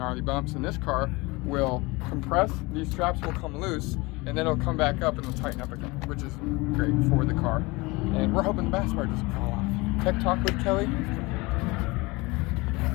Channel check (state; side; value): quieter; right; 23.9 dB